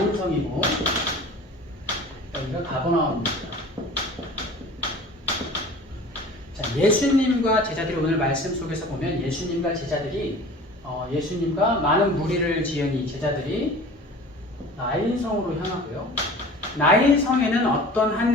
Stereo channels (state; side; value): normal; both; correlation 0.42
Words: 여기가 가버나움입니다. 자, 예수님과 제자들이 오늘 말씀 속에서 보면 예수님과 제자들이 예수님과 많은 무리를 지은 이 제자들이 나인성으로 향하고요. 나인성에는 어떤